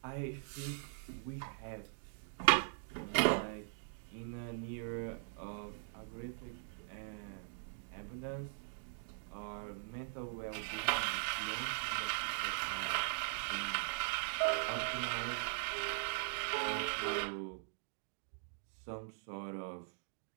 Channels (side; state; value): left; silent; digital silence